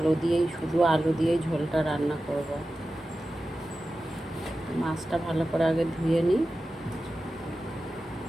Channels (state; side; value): normal; both; correlation 0.93